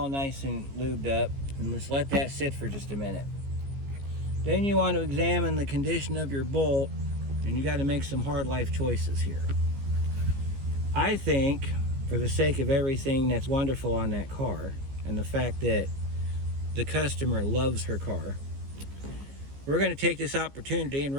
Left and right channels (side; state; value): left; late; 15 ms